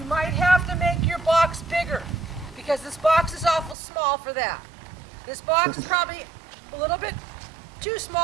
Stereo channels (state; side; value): drops out; left; at 3.8 s